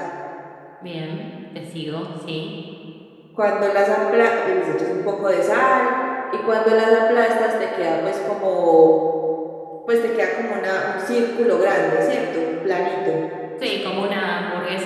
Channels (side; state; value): both; identical; correlation 1.00